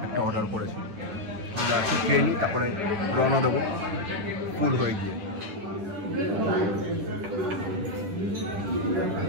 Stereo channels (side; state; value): left; late; 10 ms